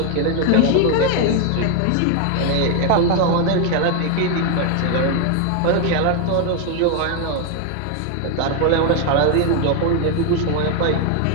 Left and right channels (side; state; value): both; different; correlation 0.01